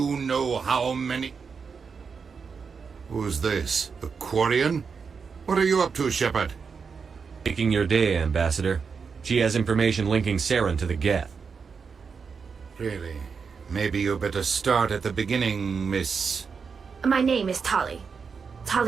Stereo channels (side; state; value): left; quieter; 5.6 dB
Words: know how many... Who's this? The Quarian? What are you up to, Shepard? Making your day, Ambassador. She has information linking Saren to the Geth. Really? Maybe you better start at the beginning, Miss... My name is Tali.